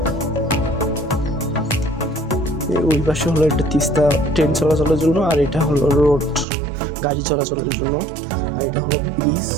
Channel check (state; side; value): drops out; left; at 6.5 s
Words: ওই পাশে হলো একটা তিস্তা ট্রেন চলাচলের জন্য, আর এটা হলো রোড গাড়ি চলাচলের জন্য, আর এটা হলো ব্রিজ,